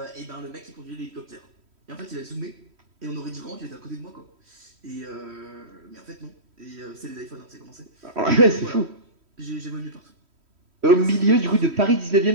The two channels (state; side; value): late; left; 3.1 ms